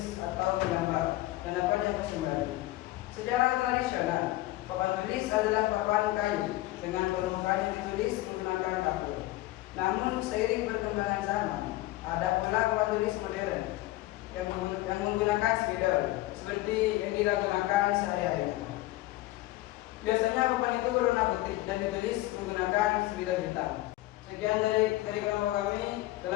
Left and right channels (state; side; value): quieter; right; 17.6 dB